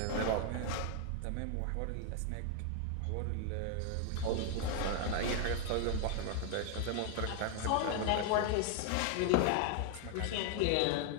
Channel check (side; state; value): both; different; correlation 0.00